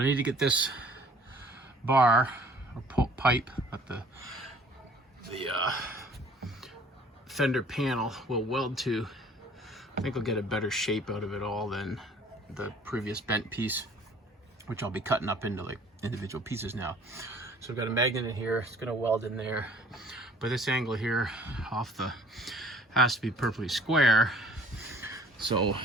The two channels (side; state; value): both; normal; correlation 0.53